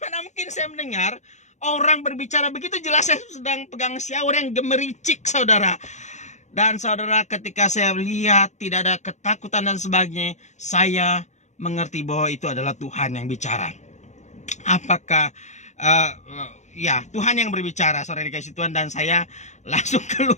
mungkin saya mendengar orang berbicara begitu? Jelas saya sedang pegang shower yang gemericik, saudara. Dan saudara, ketika saya lihat tidak ada ketakutan dan sebagainya, saya mengerti bahwa itu adalah Tuhan yang bicara. Apakah ya, Tuhan yang berbicara, saudara dikasih Tuhan. Dan saya langsung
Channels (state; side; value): late; right; 0.34 ms